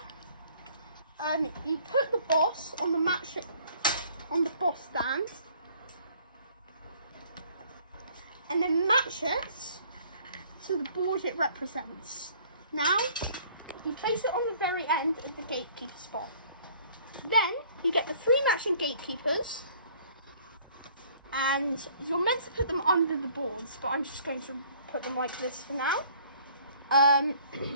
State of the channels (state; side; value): inverted; both; correlation -0.57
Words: you put the boss on the boss stand, and then match it to the board it represents. Now, you place it on the very end of the gatekeeper spot. Then, you get the 3 matching gatekeepers, and you're meant to put them under the boards, but I'm just going to put them like this for now.